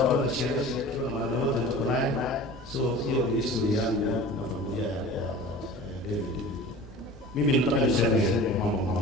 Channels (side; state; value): both; normal; correlation 0.40